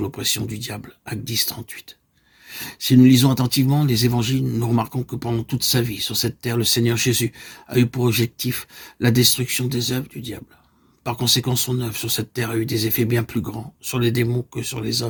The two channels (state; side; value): identical; both; correlation 1.00